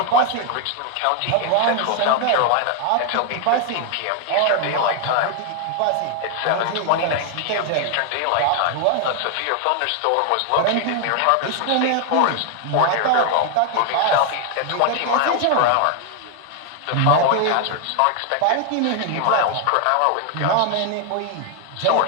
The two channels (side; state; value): both; different; correlation 0.00